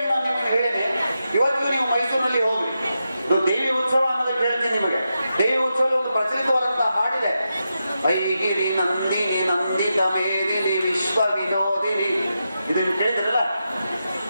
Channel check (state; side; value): inverted; both; correlation -0.88